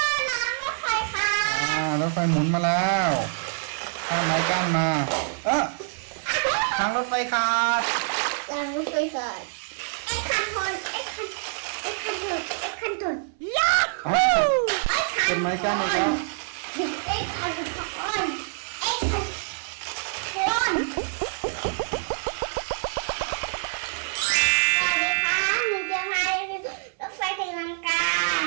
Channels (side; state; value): left; silent; 57 dB below the other